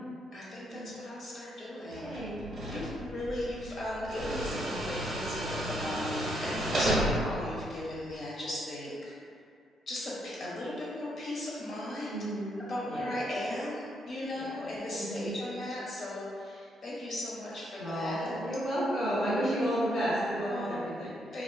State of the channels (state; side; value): normal; both; correlation 0.76